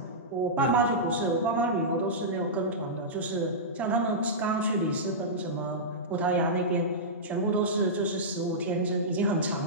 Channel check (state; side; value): normal; both; correlation -0.13